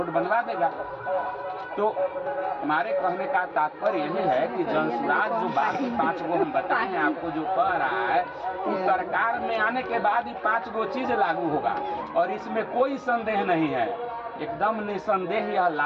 बनवा देगा। तो हमारे कहने का तात्पर्य यही है कि जनसुराज जो बाकी 5 गो हम बताए हैं आपको, जो कह रहा है, उस सरकार में आने के बाद ही 5 गो चीज लागू होगा और इसमें कोई संदेह नहीं है, एकदम निसंदेह यह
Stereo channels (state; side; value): identical; both; correlation 1.00